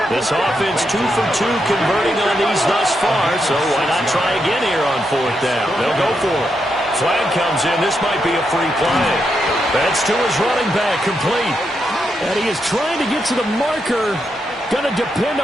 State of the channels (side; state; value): both; normal; correlation 0.83